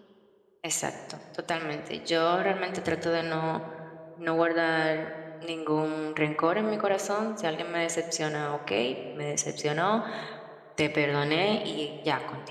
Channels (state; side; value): identical; both; correlation 1.00